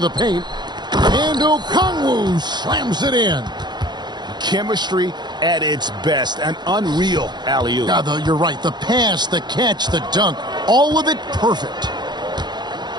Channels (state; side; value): late; left; 0.21 ms